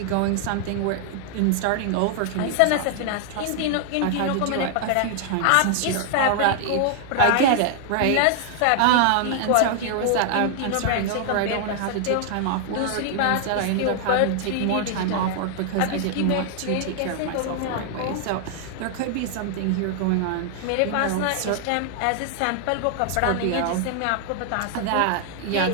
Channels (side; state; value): both; different; correlation 0.00